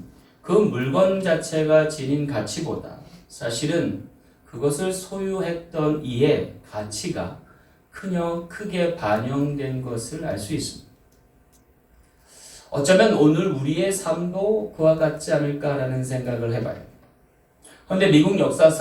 그 물건 자체가 지닌 가치보다 사실은 그것을 소유했던 이의 가치가 크게 반영된 것을 알 수 있습니다. 어쩌면 오늘 우리의 삶도 그와 같지 않을까라는 생각을 해봐요. 그런데 미국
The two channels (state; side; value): identical; both; correlation 1.00